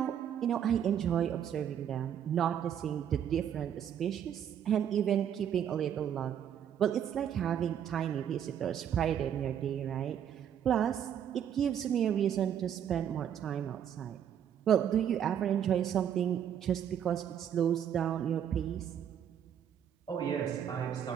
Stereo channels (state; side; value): quieter; left; 9.3 dB